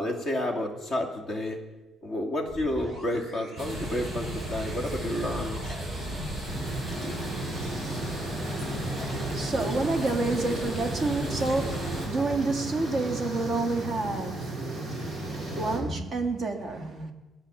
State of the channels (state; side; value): normal; both; correlation 0.76